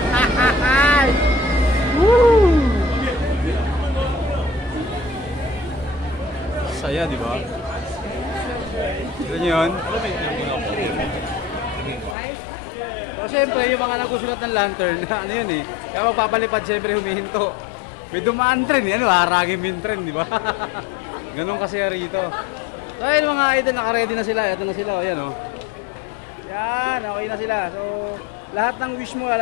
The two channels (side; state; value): right; drops out; at 12.2 s